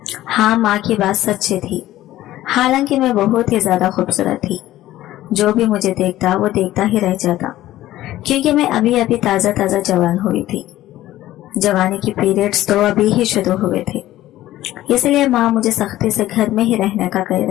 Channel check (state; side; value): quieter; right; 14.8 dB